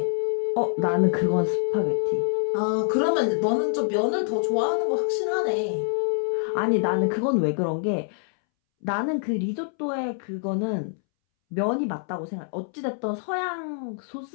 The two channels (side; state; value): right; silent; 61 dB below the other